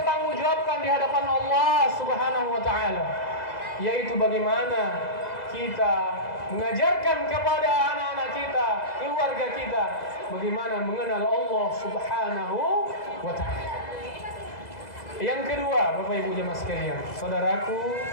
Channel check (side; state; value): right; late; 2.0 ms